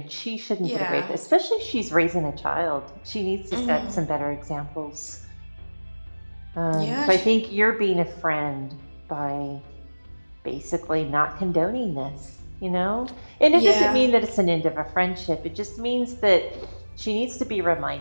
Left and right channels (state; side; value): inverted; both; correlation -1.00